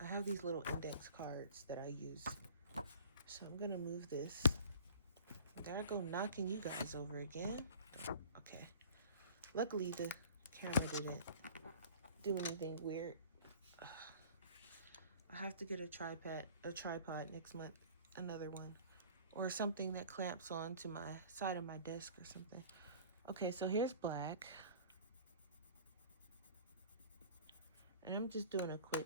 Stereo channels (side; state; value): both; inverted; correlation -0.46